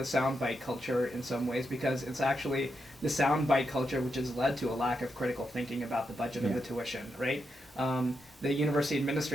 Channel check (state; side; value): normal; both; correlation 0.84